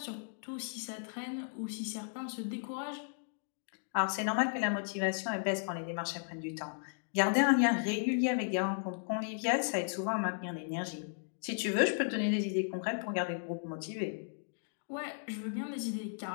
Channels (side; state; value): right; silent; digital silence